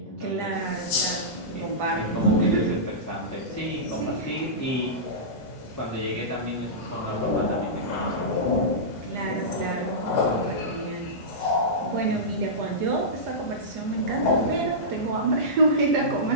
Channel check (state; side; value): normal; both; correlation -0.17